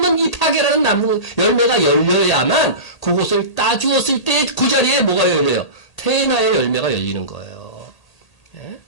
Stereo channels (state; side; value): late; right; 1.8 ms